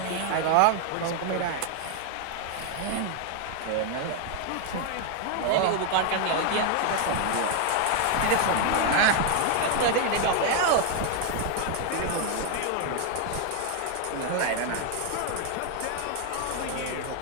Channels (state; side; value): different; both; correlation 0.01